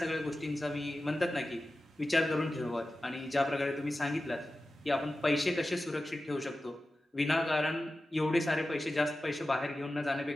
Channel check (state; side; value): normal; both; correlation 0.94